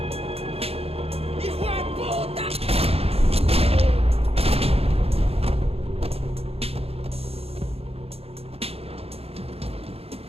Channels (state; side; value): late; left; 0.29 ms